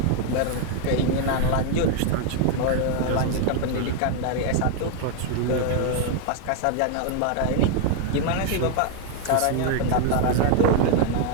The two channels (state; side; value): different; both; correlation 0.01